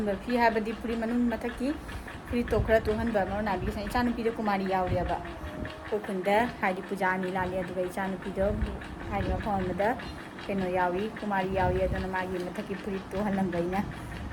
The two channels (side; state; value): both; identical; correlation 1.00